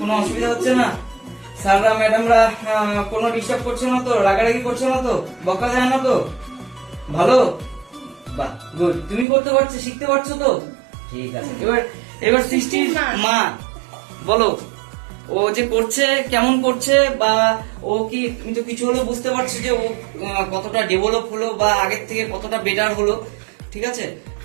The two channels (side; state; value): left; drops out; at 9.2 s